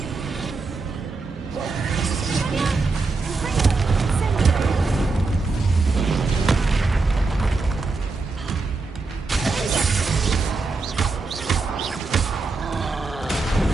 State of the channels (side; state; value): left; quieter; 3.9 dB